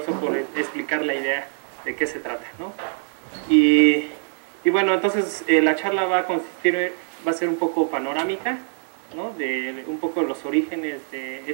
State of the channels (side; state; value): left; silent; digital silence